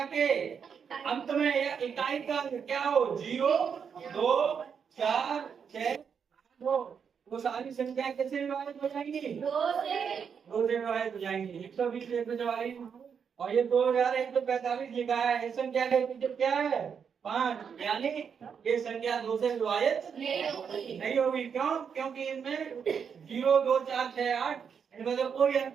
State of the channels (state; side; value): quieter; left; 6.9 dB